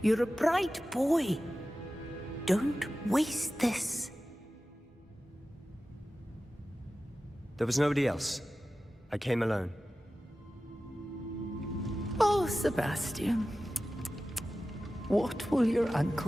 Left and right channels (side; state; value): both; normal; correlation 0.95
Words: You're a bright boy. Don't waste this. There was nobody else. I came alone. Oh, Sebastian. What will your